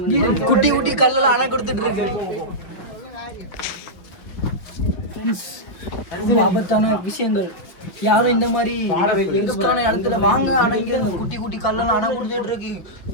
குட்டி குட்டி கல்லெல்லாம் அணை கொடுத்துட்டு இருக்கு. ரொம்ப ஆபத்தான விஷயங்கள். யாரும் இந்த மாதிரி எங்கஸ்டான இடத்துல வாங்க. ஆனா இங்க குட்டி குட்டி கல்லெல்லாம் அணை கொடுத்துட்டு இருக்கு.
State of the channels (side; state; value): right; late; 5.3 ms